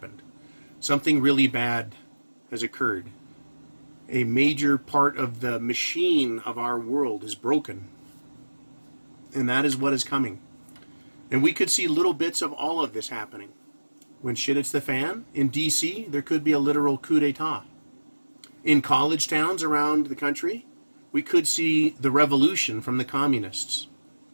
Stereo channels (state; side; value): inverted; both; correlation -1.00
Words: Something really bad has occurred. A major part of the machine of our world is broken. And that is what is coming. And we could see little bits of all of this happening. When shit hits the fan, in D.C., there could be a literal coup d'etat. In college towns around the country, we could see the revolution from the communists.